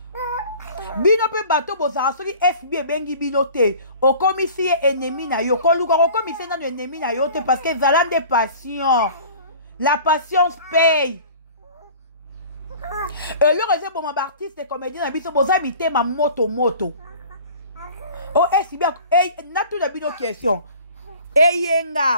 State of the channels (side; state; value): both; inverted; correlation -0.45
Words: Bino pe bato bozara soki FB bengi bilote o komisi ennemi na yo ko luka ko komisi na ennemi na yo te parce que zalan de passion. La patience paye. Et le réseau pour mon artiste et comédien na biso boza mité ma moto. Oh FB na tout na bino question.